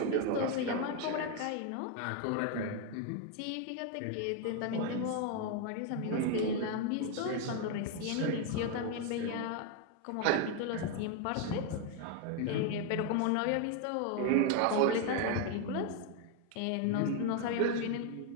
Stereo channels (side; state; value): both; different; correlation 0.01